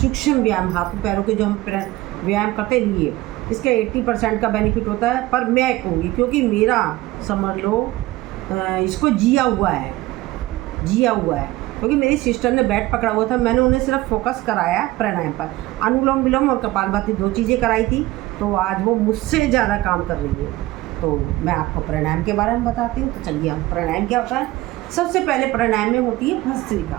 व्यायाम, हाथों पैरों के जो हम व्यायाम करते हैं लिए, इसका 80% का बेनिफिट होता है। पर मैं कहूँगी क्योंकि मेरा समझ लो इसको जिया हुआ है, क्योंकि मेरी सिस्टर ने बैट पकड़ा हुआ था, मैंने उन्हें सिर्फ फोकस कराया प्राणायाम पर। अनुलोम विलोम और कपालभाति 2 चीज़ें कराई थी, तो आज वो मुझसे ज़्यादा काम कर रही है। तो मैं आपको प्राणायाम के बारे में बताती हूँ। तो चलिए, हम प्राणायाम क्या होता है। सबसे पहले प्राणायाम में होती है भस्त्रिका।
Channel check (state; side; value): quieter; left; 18.1 dB